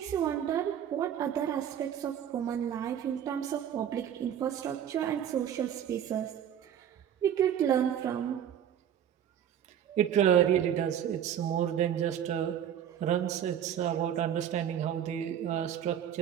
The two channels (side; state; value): left; quieter; 9.6 dB